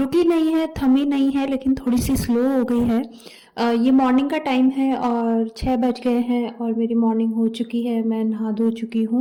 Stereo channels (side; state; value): both; identical; correlation 1.00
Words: नहीं है, थमी नहीं है, लेकिन थोड़ी सी स्लो हो गई है। ये मॉर्निंग का टाइम है और 6 बज गए हैं और मेरी मॉर्निंग हो चुकी है। मैं नहा धो चुकी